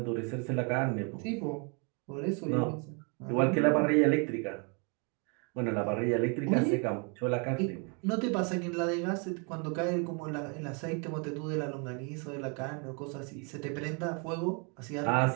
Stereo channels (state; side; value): quieter; left; 35.5 dB